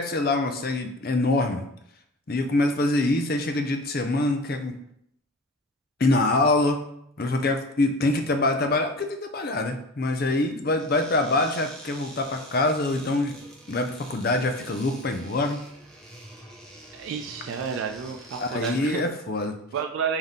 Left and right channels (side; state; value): both; normal; correlation 0.34